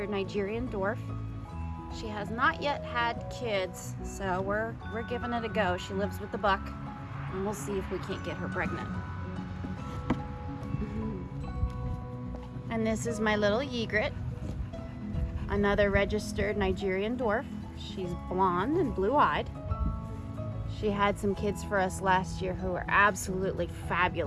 Nigerian dwarf. She has not yet had kids, so we're giving it a go. She lives with the buck, and we'll see if we can't get her pregnant. And this is my little egret, another registered Nigerian dwarf. She's blonde and blue-eyed. She had some kids for us last year who were absolutely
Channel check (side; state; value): both; identical; correlation 1.00